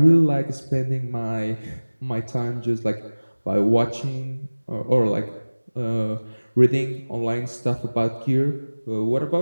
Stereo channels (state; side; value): inverted; both; correlation -1.00